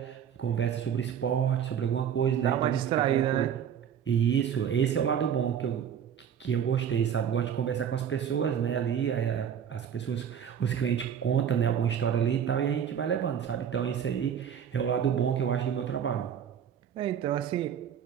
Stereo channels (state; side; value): quieter; left; 8.6 dB